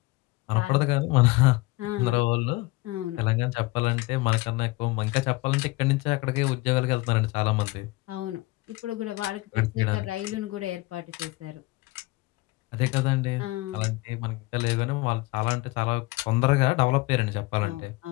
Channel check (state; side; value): quieter; right; 22.0 dB